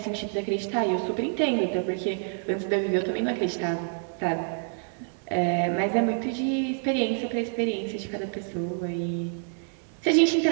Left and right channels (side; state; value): left; silent; 60 dB below the other